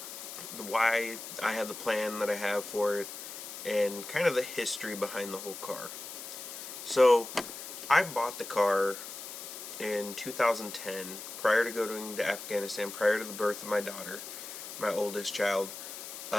the why I have the plan that I have for it, and kind of the history behind the whole car. So I bought the car in 2010, prior to going to Afghanistan, prior to the birth of my daughter, my oldest child,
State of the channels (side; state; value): left; noise; hiss, 10 dB below the sound